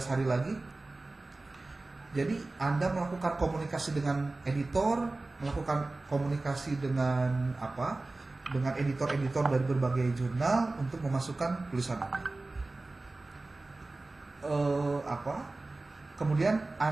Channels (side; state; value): left; quieter; 3.2 dB